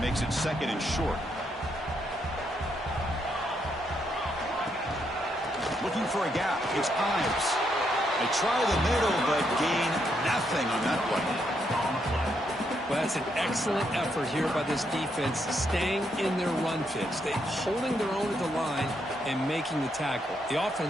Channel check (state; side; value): normal; both; correlation 0.77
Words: it 2nd and short. Looking for a gap. It's Ives. They try the middle, but gain nothing on that play. Well, that's an excellent effort here by this defense, staying in their run fits. They're holding their own at the line and making the tackle. The